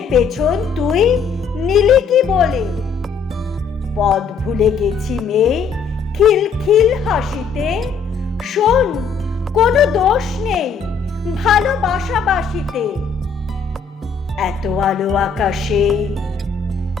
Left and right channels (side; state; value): right; quieter; 5.7 dB